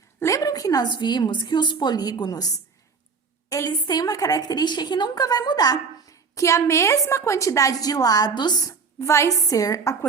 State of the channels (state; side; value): quieter; left; 5.3 dB